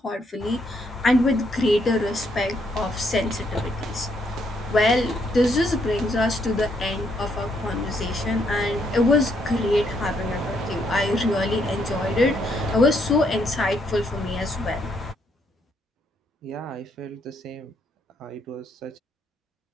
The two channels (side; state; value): both; normal; correlation 0.73